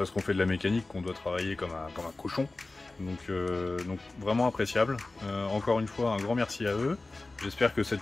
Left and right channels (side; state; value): right; quieter; 3.2 dB